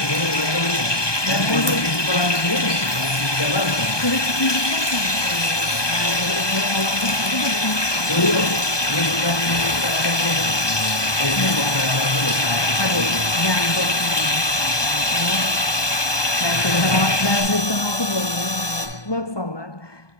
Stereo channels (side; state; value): right; late; 1.2 ms